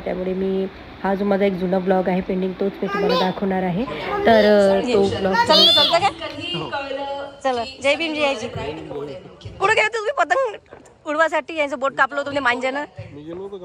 मी हा जो माझा एक जुना ब्लॉग आहे पेंडिंग, तोच मी तुम्हाला दाखवणार आहे. तर तो ब्लॉग चला. जय भीम जयाजी. कुठं गेले तुम्ही पतंग उडवासाठी? यांचं बोट कापलं होतं मांजानं.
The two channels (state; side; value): identical; both; correlation 1.00